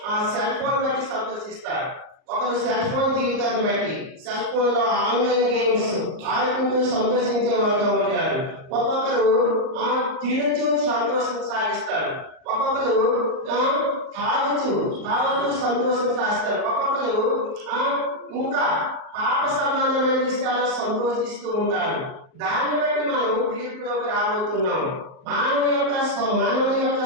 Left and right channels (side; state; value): left; late; 38 ms